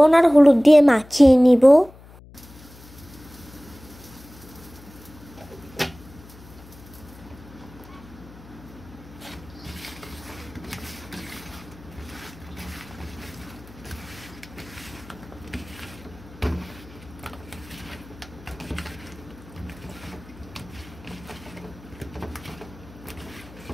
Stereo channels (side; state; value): left; noise; hum, 20 dB below the sound